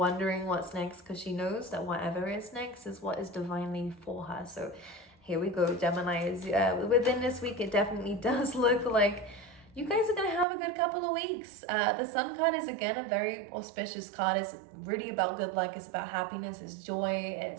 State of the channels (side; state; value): left; drops out; at 10.5 s